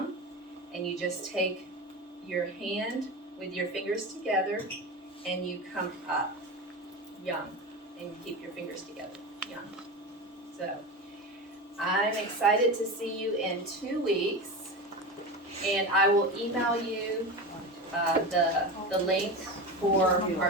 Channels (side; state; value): both; normal; correlation 0.24